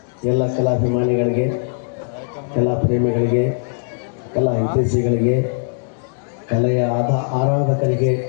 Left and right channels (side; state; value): right; silent; digital silence